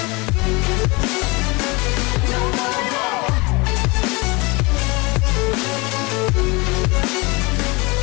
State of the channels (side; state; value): right; quieter; 26.0 dB